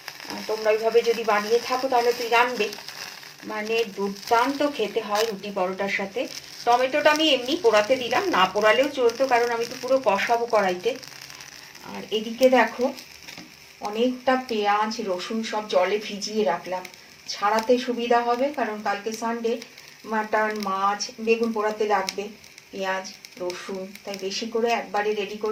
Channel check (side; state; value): both; identical; correlation 1.00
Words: তোমরা ওইভাবে যদি বানিয়ে থাকো তাহলে তুই জানবে, মানে দুর্দান্ত খেতে হয় রুটি পরোটার সাথে। টমেটোটা আমি এমনি পোড়াতে দিলাম, না পোড়ালেও চলতো, কারণ আমি তো পুরো কষাবো কড়াইতে। আর এদিকে দেখো অনেকটা পেঁয়াজ রসুন সব জলে ভিজিয়ে রাখলাম, ছাড়াতে সুবিধা হবে, কারণ কালকে সানডে, মাটন মাছ বেগুন পোড়াতে লাগবে পেঁয়াজ রসুন, তাই বেশি করে একবারে রেডি